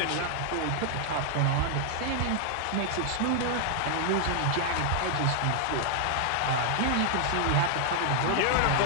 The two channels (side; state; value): both; different; correlation 0.00